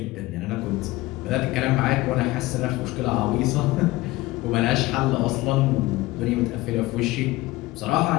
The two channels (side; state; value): right; quieter; 19.2 dB